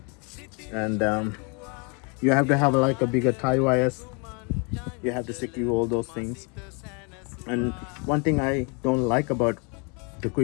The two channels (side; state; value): right; quieter; 34.0 dB